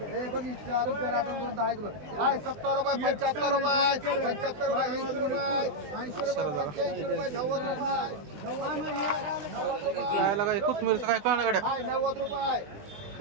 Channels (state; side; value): late; left; 20 ms